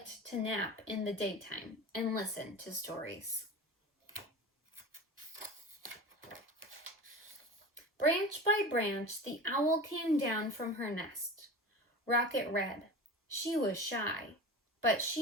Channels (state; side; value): normal; both; correlation 0.32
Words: to nap in the daytime and listen to stories. Branch by branch, the owl came down from her nest. Rocket read. She was shy, but